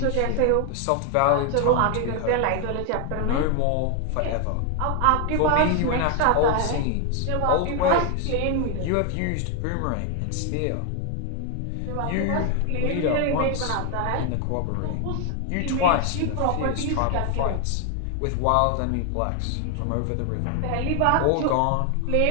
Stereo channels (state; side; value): different; both; correlation 0.00